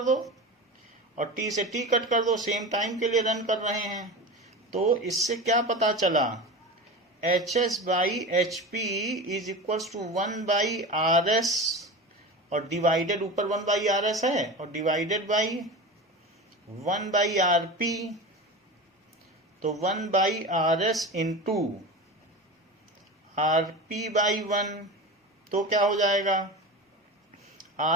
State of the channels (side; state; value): both; normal; correlation 0.28